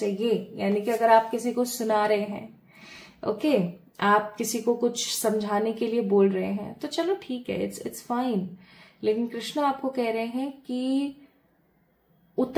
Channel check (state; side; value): identical; both; correlation 1.00